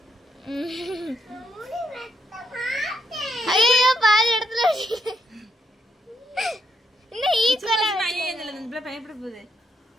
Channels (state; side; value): normal; both; correlation 0.78